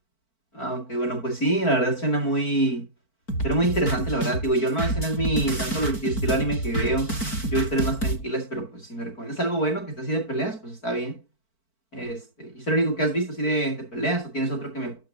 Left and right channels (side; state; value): right; late; 4.5 ms